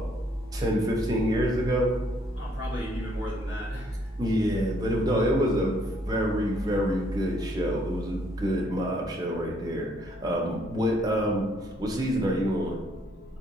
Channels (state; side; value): normal; both; correlation 0.67